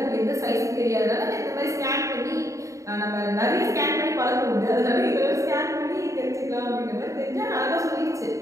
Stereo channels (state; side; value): late; left; 0.15 ms